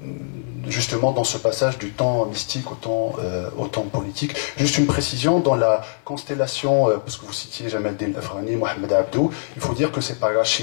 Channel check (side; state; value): right; silent; 64 dB below the other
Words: justement dans ce passage du temps mystique au temps politique. Juste une précision, dans la constellation, parce que vous citiez Jamal Din Afghani, Mohamed Abdou, il faut dire que c'est par